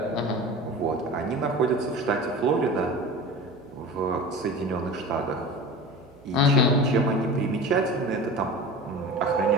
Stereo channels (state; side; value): noise; right; hum, 27 dB below the sound